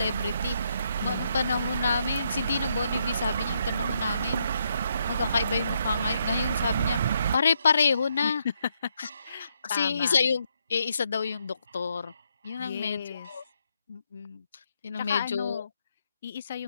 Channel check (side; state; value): both; inverted; correlation -0.77